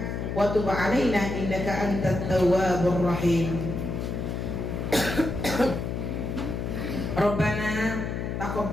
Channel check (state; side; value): noise; left; hum, 3 dB below the sound